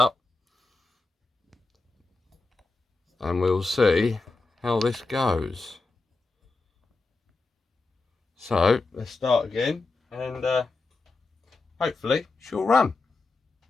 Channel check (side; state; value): right; quieter; 3.6 dB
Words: and we'll see how this goes. So let's start again, and hopefully she'll run.